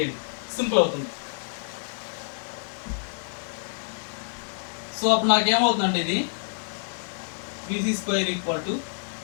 సింపుల్ అవుతుంది. సో అప్పుడు నాకేమవుతుందంటే ఇది VC square equal to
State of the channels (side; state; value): right; silent; digital silence